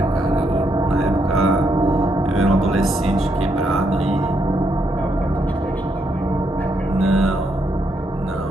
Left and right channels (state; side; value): normal; both; correlation 0.77